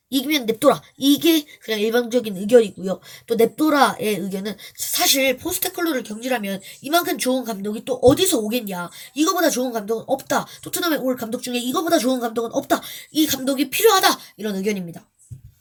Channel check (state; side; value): identical; both; correlation 1.00